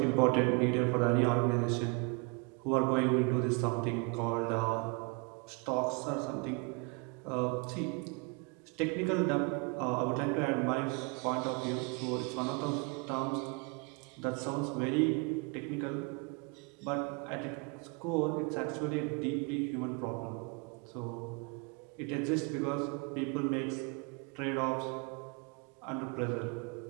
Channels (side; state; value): left; quieter; 32.0 dB